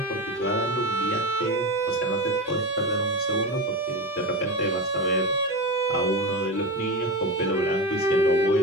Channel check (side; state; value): both; normal; correlation 0.21